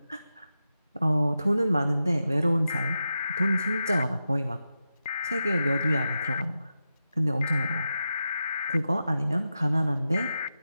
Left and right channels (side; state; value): both; inverted; correlation -0.90